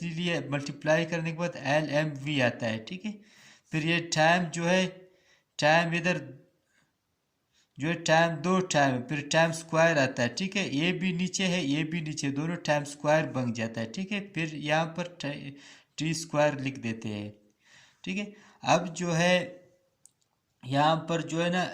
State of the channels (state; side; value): identical; both; correlation 1.00